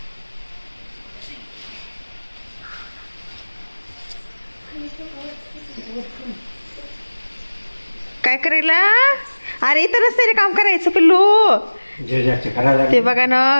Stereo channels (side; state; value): both; inverted; correlation -1.00